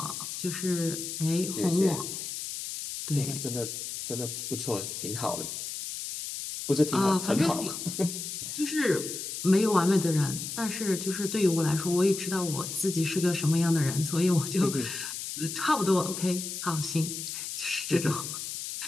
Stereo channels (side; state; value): left; noise; hiss, 6 dB below the sound